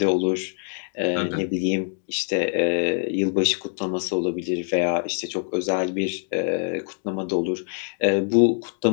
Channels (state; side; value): silent; right; 62 dB below the other